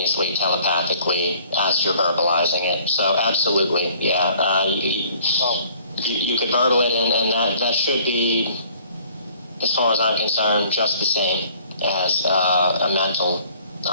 telepathically, as you're verbalizing it. So absolutely, yeah. You could verbal it, and that should be, as far as I'm concerned, just the same as a mental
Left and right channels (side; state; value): both; inverted; correlation -0.57